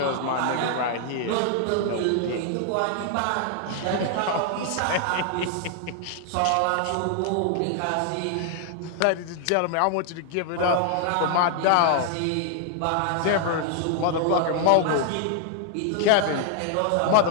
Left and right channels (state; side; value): different; both; correlation 0.00